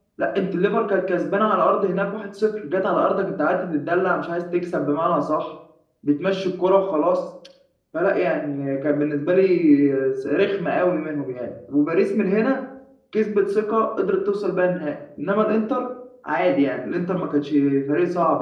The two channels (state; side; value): identical; both; correlation 1.00